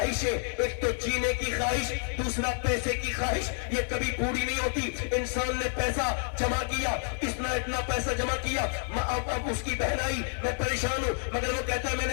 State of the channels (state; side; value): silent; right; 58 dB below the other